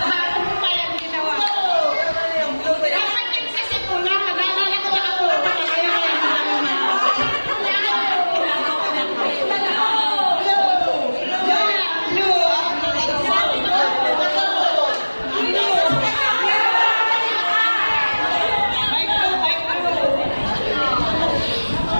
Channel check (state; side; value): inverted; both; correlation -1.00